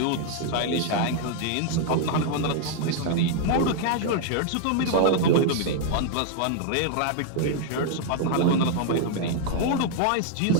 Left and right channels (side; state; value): both; different; correlation 0.00